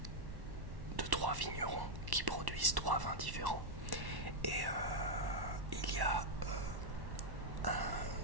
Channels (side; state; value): left; late; 1.1 ms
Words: de 3 vignerons qui produisent 3 vins différents. Et il y a